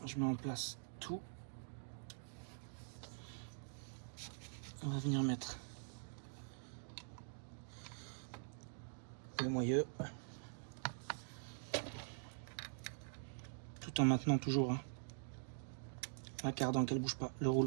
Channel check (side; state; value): left; silent; digital silence